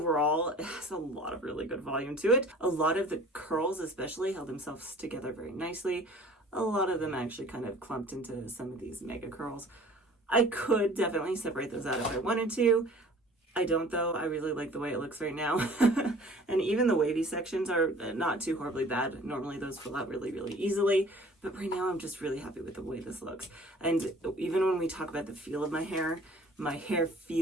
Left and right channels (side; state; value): both; normal; correlation 0.48